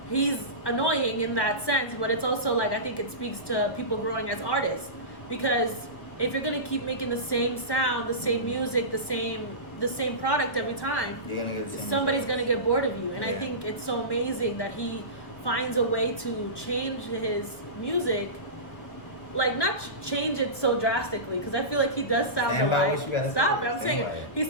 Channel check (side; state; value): right; late; 1.4 ms